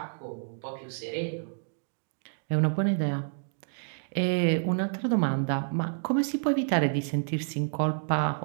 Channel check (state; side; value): silent; left; digital silence